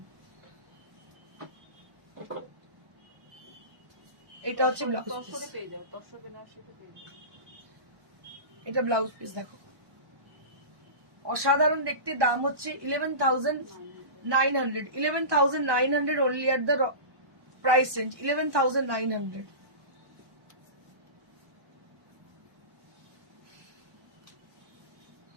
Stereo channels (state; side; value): late; left; 1.2 ms